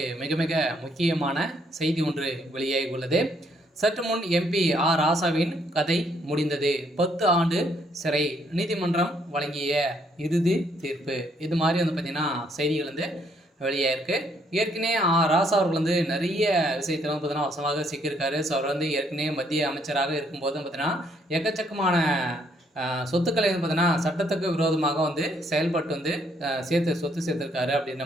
மிக மிக முக்கியமான செய்தி ஒன்று வெளியாகி உள்ளது. சற்று முன் எம்பி ஆர் ராசாவின் கதை முடிந்தது, 10 ஆண்டு சிறை, நீதிமன்றம் வழங்கிய இறுதி தீர்ப்பு. இது மாதிரி பார்த்தீங்கன்னா செய்திகள் வெளியாயிருக்கு. ஏற்கனவே ராசா அவர்கள் நிறைய விஷயத்தில் பார்த்தீங்கன்னா வசமாக சிக்கியிருக்காரு. ஸோ அவர் ஏற்கனவே மத்திய அமைச்சராக இருக்கும்போது பார்த்தீங்கன்னா எக்கச்சக்கமான சொத்துக்களை பார்த்தீங்கன்னா சட்டத்துக்கு விரோதமாக செயல்பட்டு சொத்து சேர்த்துருக்காரு அப்படின்ற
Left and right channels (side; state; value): both; normal; correlation 0.69